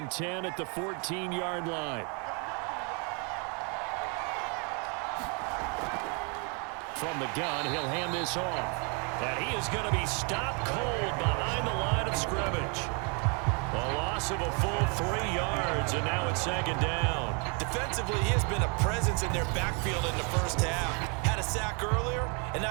10 at the 14-yard line. From the gun, he'll hand this off. And he is going to be stopped cold behind the line of scrimmage. A loss of a full 3 yards, and now it's 2nd down. Defensively, he has been a presence in their backfield in the 1st half. Had a sack earlier, and now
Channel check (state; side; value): quieter; left; 35.3 dB